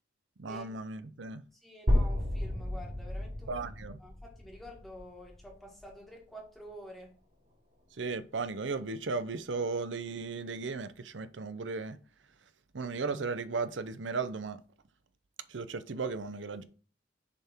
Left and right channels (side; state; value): both; normal; correlation 0.41